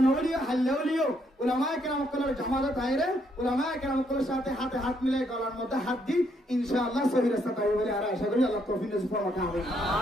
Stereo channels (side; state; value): both; normal; correlation 0.73